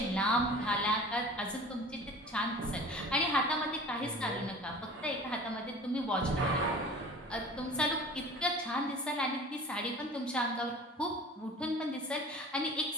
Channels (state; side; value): normal; both; correlation 0.41